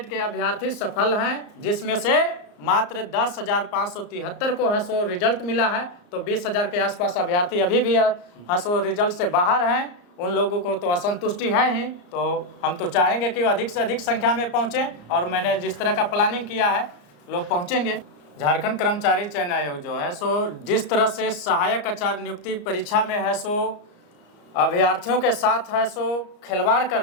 के अभ्यर्थी सफल हैं, जिसमें से मात्र 10,573 को है सो रिजल्ट मिला है। तो 20,000 के आसपास अभ्यर्थी अभी भी है सो रिजल्ट से बाहर हैं। उन लोगों को तो असंतुष्टि है ही, तो हम तो चाहेंगे कि अधिक से अधिक संख्या में पहुंचे, और मैंने जिस तरह का प्लानिंग किया है लोग पहुंचेंगे। झारखंड कर्मचारी चयन आयोग जो है सो जिस तरह से सहायक आचार्य नियुक्ति परीक्षा में है सो अभ्यर्थियों के साथ है सो खिलवाड़ कर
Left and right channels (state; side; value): late; right; 34 ms